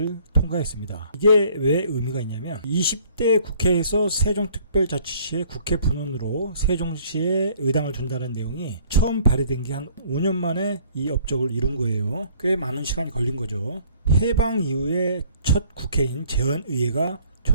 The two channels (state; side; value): inverted; both; correlation -0.57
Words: 통과했습니다. 이게 왜 의미가 있냐면 20대 국회에서 세종특별자치시의 국회 분원으로 세종시에 의당을 둔다는 내용이 처음 발의된 게 한 5년 만에 이 업적을 이룬 거예요. 꽤 많은 시간이 걸린 거죠. 해방 이후에 첫 국회인 재헌의회가